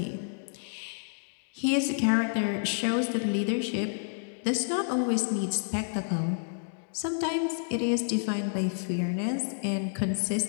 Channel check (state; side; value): silent; right; digital silence